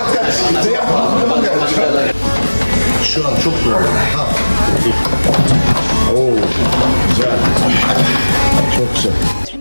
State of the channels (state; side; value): inverted; both; correlation -1.00